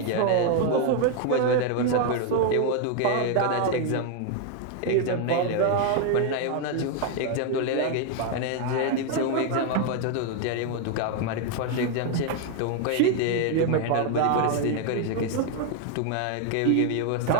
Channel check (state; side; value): different; both; correlation 0.00